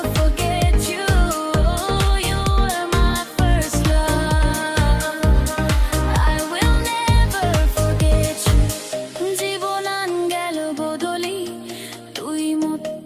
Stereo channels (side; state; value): both; identical; correlation 1.00